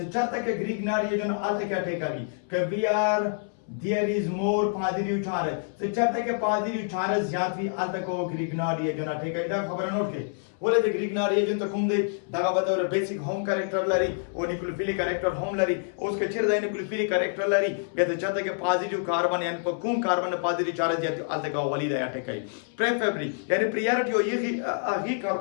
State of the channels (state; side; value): silent; right; 60 dB below the other